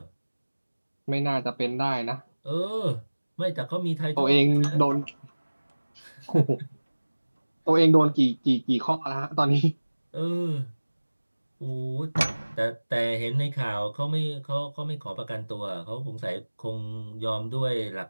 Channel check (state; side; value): inverted; both; correlation -1.00